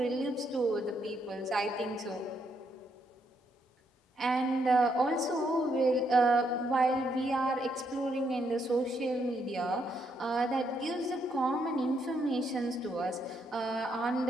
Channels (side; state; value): both; normal; correlation 0.76